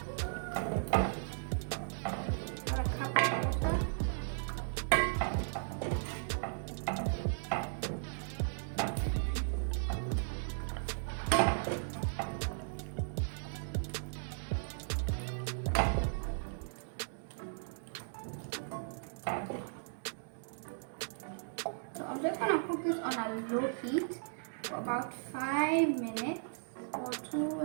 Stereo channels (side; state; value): left; silent; digital silence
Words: So I'm just gonna cook this on a low heat for about 5 minutes or